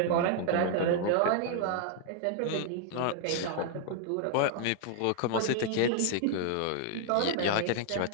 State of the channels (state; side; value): different; both; correlation 0.00